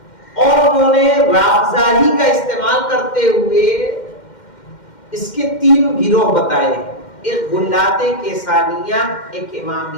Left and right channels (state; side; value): late; right; 2.1 ms